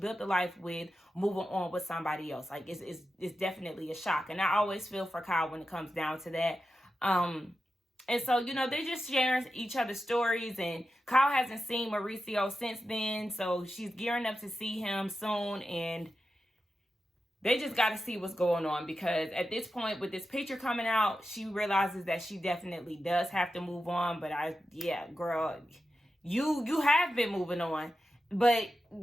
a life with moving on with somebody else. Like, it's definitely a shock. And I always feel for Kyle when it comes down to that. And so, they're just sharing each other's stories. And Kyle hasn't seen Mauricio since then. So she's gearing up to see him soon. And they just got to see what's going on, because at this point, with this picture coming out, she realizes that she definitely does have to move on. But girl, you have been moving on. But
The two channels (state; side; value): normal; both; correlation 0.91